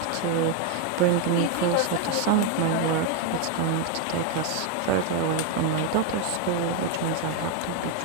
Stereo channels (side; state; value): both; different; correlation 0.01